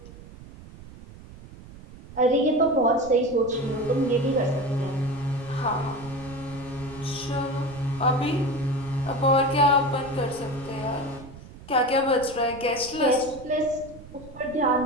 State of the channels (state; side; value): noise; right; rumble, 17 dB below the sound